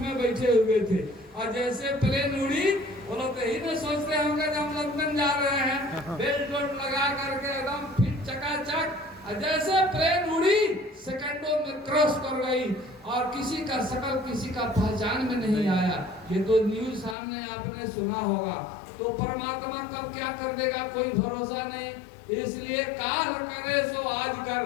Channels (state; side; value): drops out; right; at 17.2 s